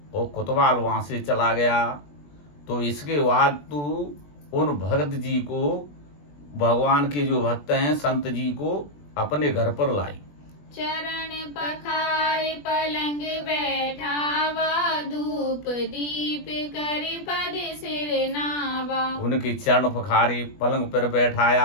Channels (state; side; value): late; right; 20 ms